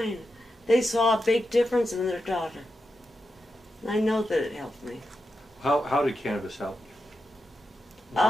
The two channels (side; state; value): both; normal; correlation 0.88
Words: They saw a big difference in their daughter. And I know that it helped me. How did cannabis help you?